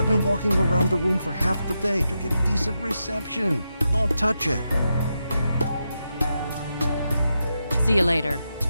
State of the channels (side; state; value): both; inverted; correlation -0.86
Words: been walking around the room for half the day to get decent reception. Don't touch it. See you later.